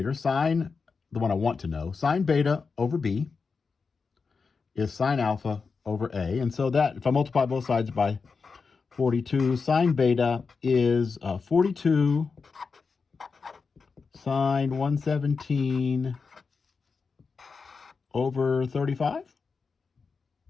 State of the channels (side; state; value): right; quieter; 4.9 dB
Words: the one I want to know. Sine beta over b is sine alpha over a. And so that, if I multiply both sides by 42, sine beta is 42 sine 117 over 35.